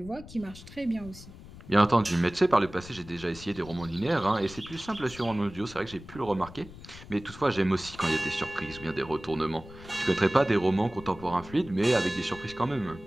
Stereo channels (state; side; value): noise; left; rumble, 17 dB below the sound